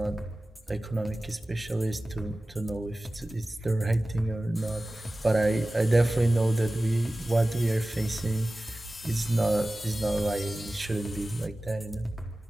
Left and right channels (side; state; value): both; normal; correlation 0.96